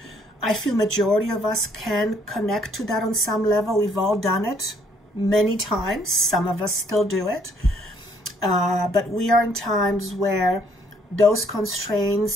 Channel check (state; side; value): normal; both; correlation 0.65